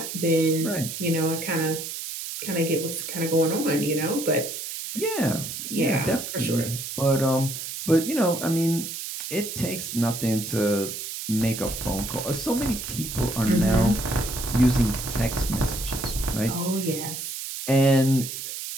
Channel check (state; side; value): noise; right; hiss, 7 dB below the sound